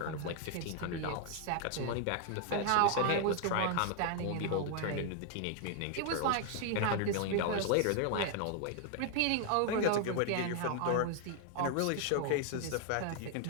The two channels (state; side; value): different; both; correlation 0.00